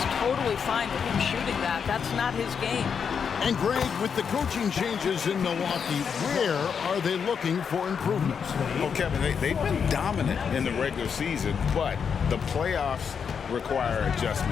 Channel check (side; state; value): right; quieter; 6.7 dB